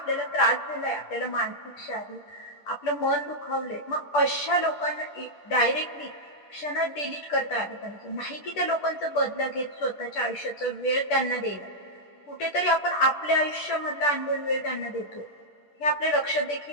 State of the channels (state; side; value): late; right; 10 ms